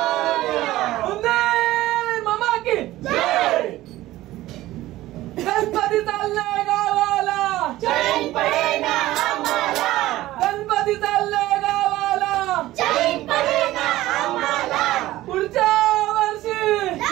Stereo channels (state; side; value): quieter; left; 16.2 dB